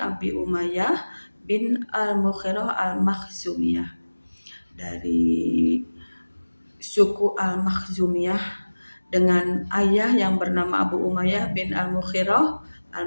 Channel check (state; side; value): inverted; both; correlation -1.00